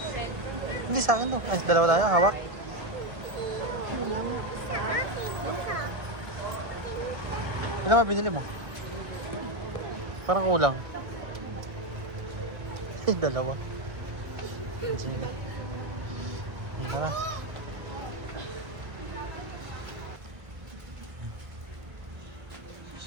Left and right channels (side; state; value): left; late; 1.4 ms